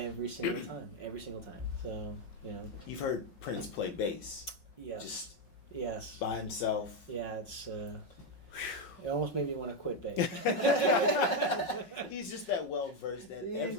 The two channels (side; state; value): right; late; 5.5 ms